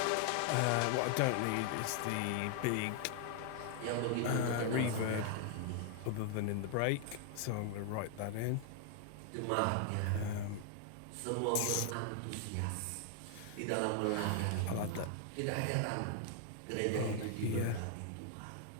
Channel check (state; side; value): different; both; correlation 0.00